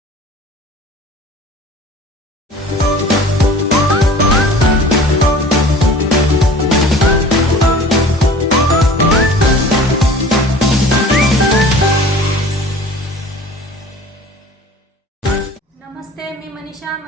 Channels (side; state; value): both; normal; correlation 0.44